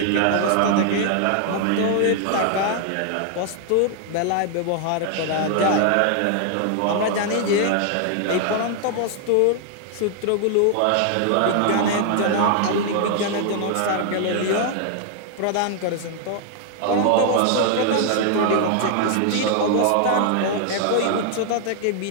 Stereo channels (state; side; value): different; both; correlation 0.00